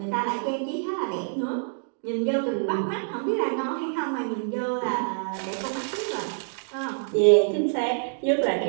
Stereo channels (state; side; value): silent; left; digital silence